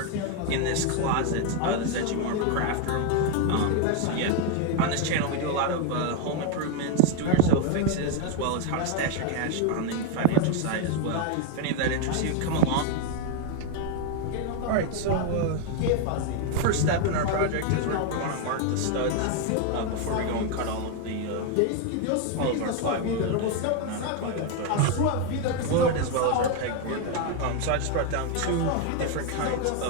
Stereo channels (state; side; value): different; both; correlation 0.01